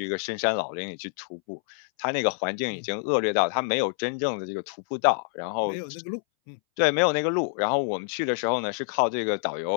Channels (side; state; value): right; silent; 60 dB below the other